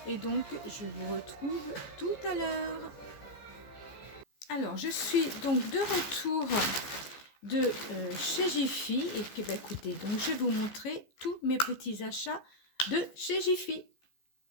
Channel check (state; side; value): late; right; 15 ms